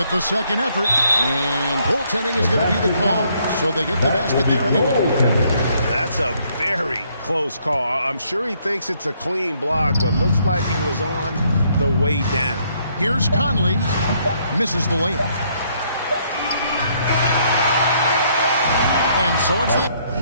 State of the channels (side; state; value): both; inverted; correlation -0.69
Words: the second effort. And goaltending is going to be the call. So they get the basket there anyway. That's a very close call. I'm sure he thinks it's a clean block, but looks like it was on the way down. Here's Conley. Misses the layup. And so it's the